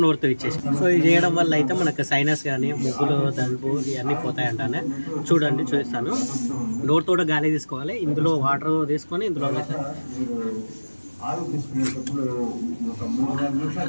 నోరుతో ఇచ్చేసి. సో ఇది చేయడం వల్ల అయితే మనకు సైనస్ కానీ ముగ్గులు దలుపు ఇవన్నీ పోతాయంటానే. చూడండి చూపిస్తాను. డోర్ తోట గాలి తీసుకోవాలి, ఇందులో వాటర్ తీసుకొని ఇందులో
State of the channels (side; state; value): both; inverted; correlation -1.00